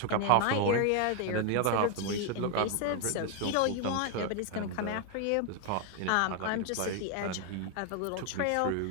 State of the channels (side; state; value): both; different; correlation 0.00